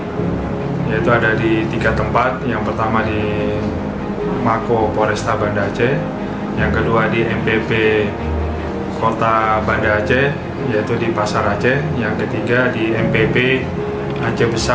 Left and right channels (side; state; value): both; identical; correlation 1.00